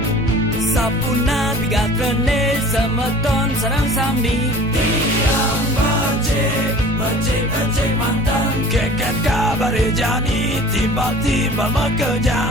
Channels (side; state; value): both; normal; correlation 0.45